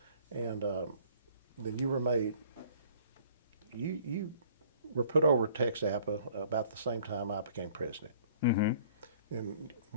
And then you were made, you were put over TXAPA about the same time I became president. And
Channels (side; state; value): both; inverted; correlation -0.55